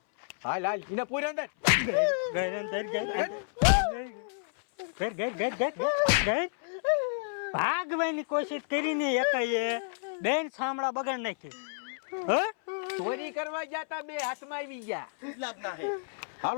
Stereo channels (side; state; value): right; silent; 58 dB below the other